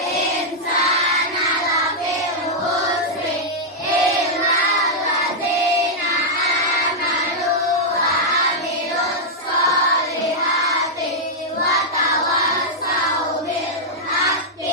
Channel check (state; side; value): normal; both; correlation -0.05